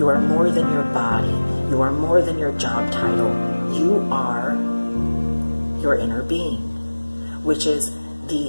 are more than your body. You are more than your job title. You are your inner being, which is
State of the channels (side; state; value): both; inverted; correlation -1.00